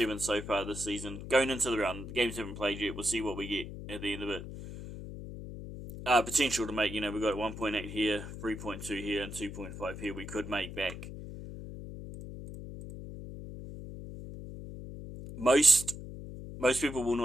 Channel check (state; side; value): noise; left; hum, 10 dB below the sound